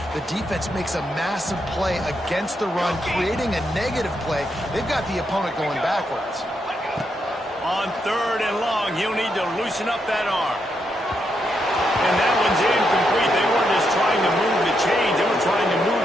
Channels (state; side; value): normal; both; correlation 0.81